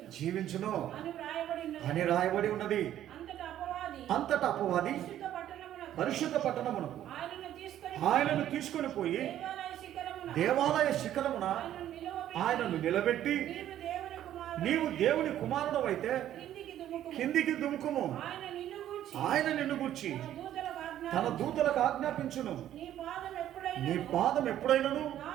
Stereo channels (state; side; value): quieter; left; 11.8 dB